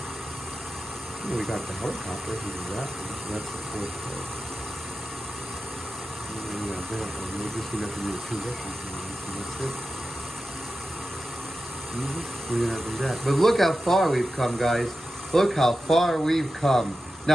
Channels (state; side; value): normal; both; correlation 0.92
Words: We got the helicopter, we do that one, so that's the fourth part. And we got that one, we're just gonna have to do two Russian things, and that's it. We're gonna have to do that. But look how far we've come, guys. Look how far we've come.